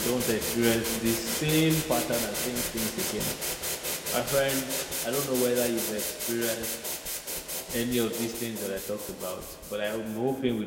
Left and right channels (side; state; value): both; identical; correlation 1.00